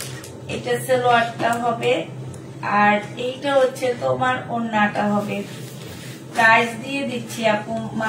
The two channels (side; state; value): both; identical; correlation 1.00